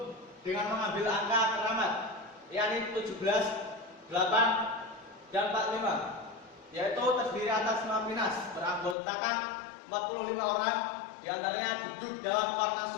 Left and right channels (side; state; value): right; drops out; at 9.0 s